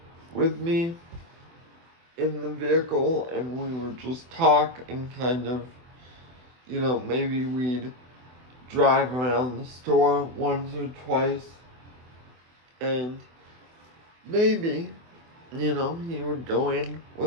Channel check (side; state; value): left; late; 24 ms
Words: with me in the vehicle and we would just talk and kind of, maybe we'd drive around the store once or twice, and maybe, he would go in